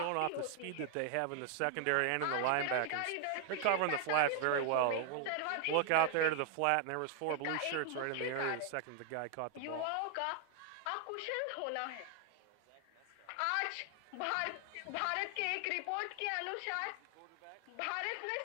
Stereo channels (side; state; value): both; different; correlation 0.00